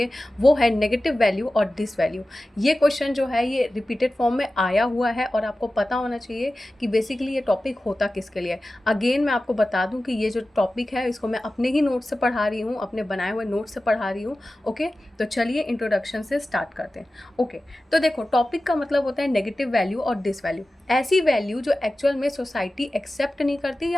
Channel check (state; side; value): normal; both; correlation 0.95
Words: वो है नेगेटिव वैल्यू और डिस वैल्यू। ये क्वेश्चन जो है ये रिपीटेड फॉर्म में आया हुआ है और आपको पता होना चाहिए कि बेसिकली ये टॉपिक होता किसके लिए। अगेन मैं आपको बता दूँ कि ये जो टॉपिक है इसको मैं अपने ही नोट से पढ़ा रही हूँ, अपने बनाए हुए नोट से पढ़ा रही हूँ। ओके, तो चलिए इंट्रोडक्शन से स्टार्ट करते हैं। ओके, तो देखो टॉपिक का मतलब होता है नेगेटिव वैल्यू और डिस वैल्यू। ऐसी वैल्यू जो एक्चुअल में सोसाइटी एक्सेप्ट नहीं करती